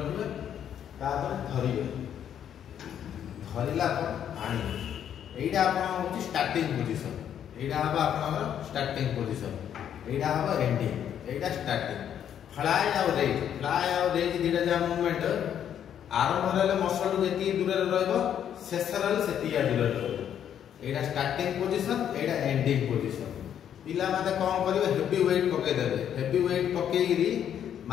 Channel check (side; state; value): right; quieter; 9.5 dB